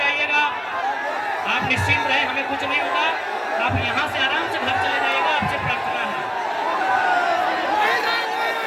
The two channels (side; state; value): both; identical; correlation 1.00